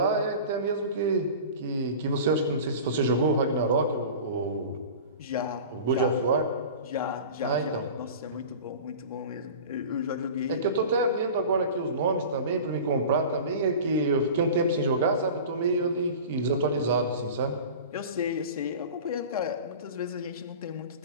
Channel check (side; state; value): both; inverted; correlation -0.36